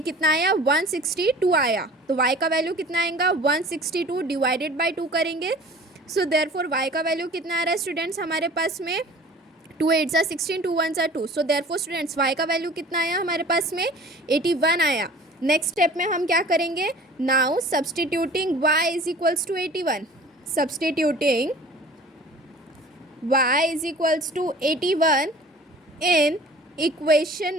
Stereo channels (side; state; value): both; normal; correlation 0.45